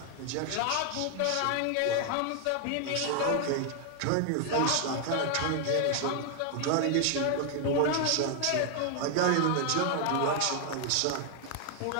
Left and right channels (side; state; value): both; different; correlation 0.00